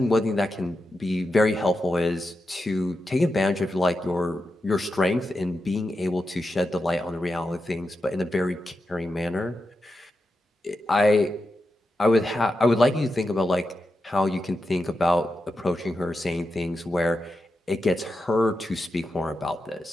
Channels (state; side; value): normal; both; correlation 0.88